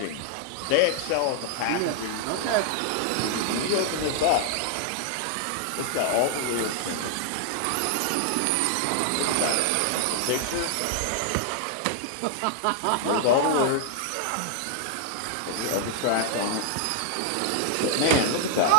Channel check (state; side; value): different; both; correlation 0.00